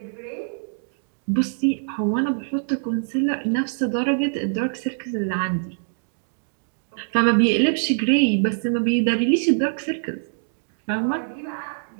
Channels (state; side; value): silent; left; digital silence